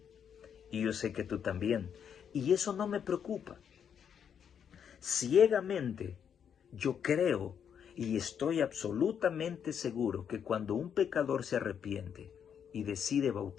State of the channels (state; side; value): quieter; right; 8.0 dB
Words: Y yo sé que tú también. Y eso no me preocupa. Ciegamente, yo creo y estoy absolutamente seguro que cuando un pecador se arrepiente y decide